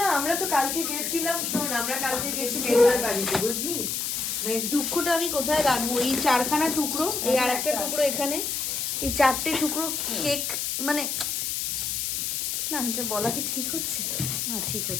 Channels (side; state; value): left; noise; hiss, 1 dB below the sound